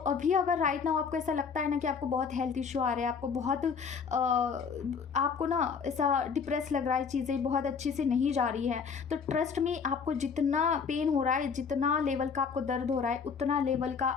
अभी अगर राइट नाउ आपको ऐसा लगता है ना कि आपको बहुत हेल्थ इशू आ रहे हैं, आपको बहुत आपको ना ऐसा डिप्रेस लग रहा है, चीज़ें बहुत अच्छी से नहीं जा रही है, तो ट्रस्ट में आपको जितना पेन हो रहा है, जितना लेवल का आपको दर्द हो रहा है, उतना लेवल का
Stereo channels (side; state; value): right; quieter; 6.0 dB